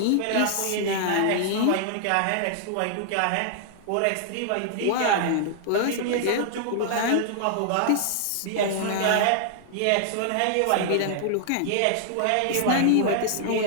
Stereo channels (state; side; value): different; both; correlation 0.00